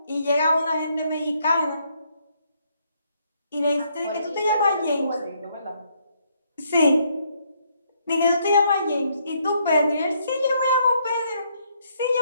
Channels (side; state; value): both; inverted; correlation -0.71